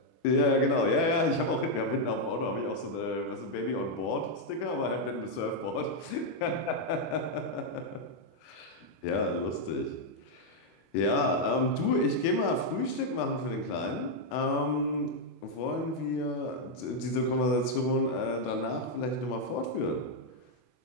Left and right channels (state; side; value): late; right; 25 ms